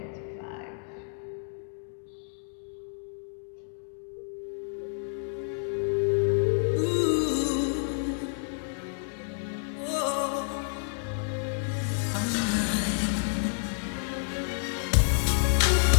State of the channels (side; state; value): right; silent; digital silence